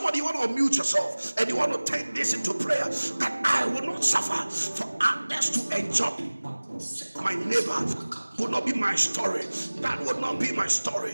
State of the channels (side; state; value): both; inverted; correlation -1.00